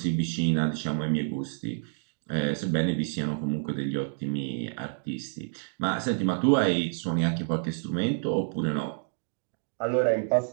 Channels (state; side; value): silent; left; digital silence